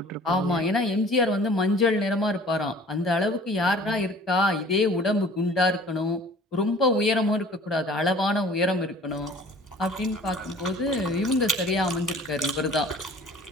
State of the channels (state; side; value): normal; both; correlation 0.49